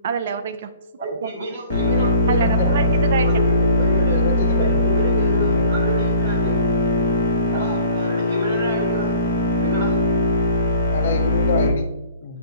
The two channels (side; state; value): both; inverted; correlation -0.51